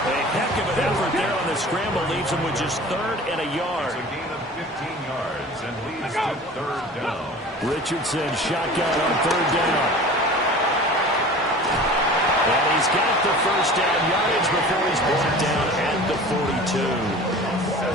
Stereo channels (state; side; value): normal; both; correlation 0.40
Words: A heck of an effort there on the scramble leaves him with just 3rd and a yard. It's a gain of 15 yards and leads to 3rd down. Richardson shotgun on 3rd down. And he's got the first down yardage before he's brought down at the